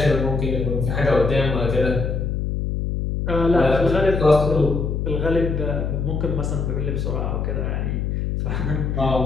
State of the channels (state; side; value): noise; left; hum, 1 dB below the sound